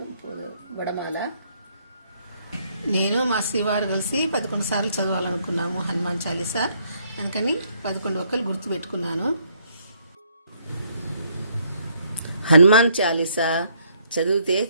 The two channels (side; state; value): both; inverted; correlation -0.68